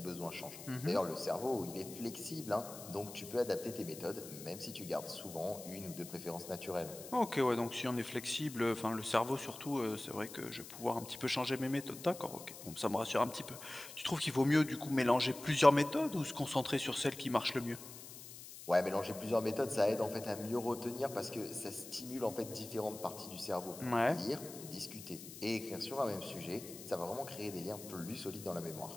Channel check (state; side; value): noise; left; hiss, 13 dB below the sound